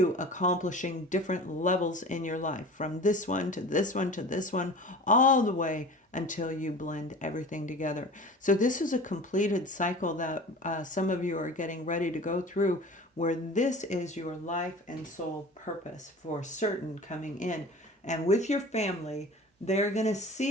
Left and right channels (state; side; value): normal; both; correlation 0.39